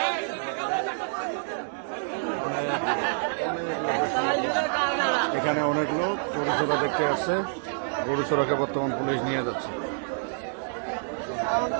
এখানে অনেক লোক গরু চোরা দেখতে আসছে। গরু চোরাকে বর্তমান পুলিশ নিয়ে যাচ্ছে।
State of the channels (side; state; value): left; silent; digital silence